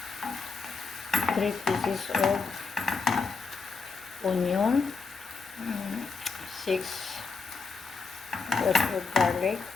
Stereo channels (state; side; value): quieter; right; 4.7 dB